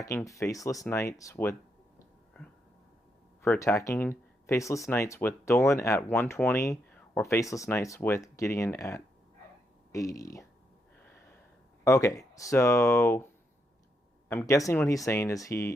faceless knights with Dolan at 120 or faceless knights with Gideon at 80? Okay, so I'm guessing what he's saying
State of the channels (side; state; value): both; normal; correlation 0.80